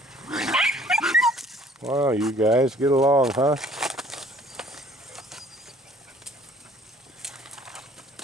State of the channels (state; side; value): normal; both; correlation 0.55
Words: Wow, you guys get along, huh?